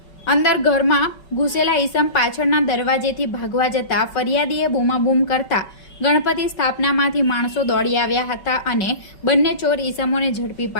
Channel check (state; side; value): late; right; 5.3 ms